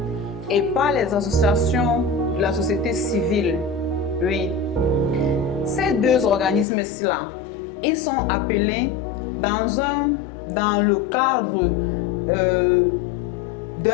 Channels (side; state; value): right; drops out; at 6.7 s